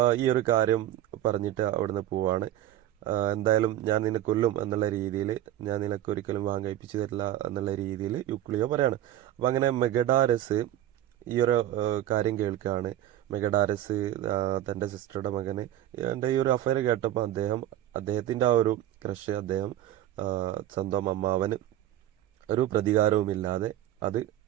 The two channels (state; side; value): quieter; left; 12.8 dB